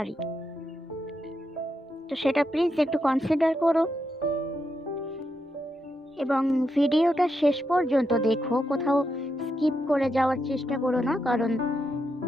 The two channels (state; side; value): normal; both; correlation 0.83